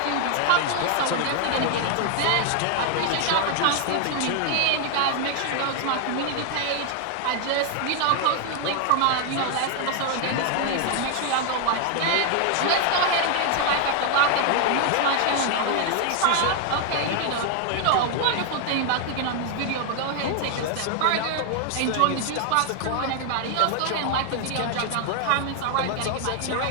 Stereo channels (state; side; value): different; both; correlation 0.00